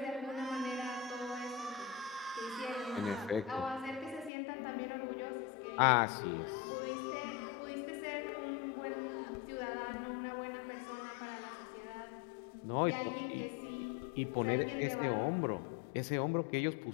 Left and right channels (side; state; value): right; drops out; at 4.3 s